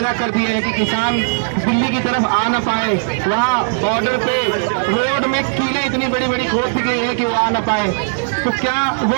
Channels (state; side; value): silent; left; 68 dB below the other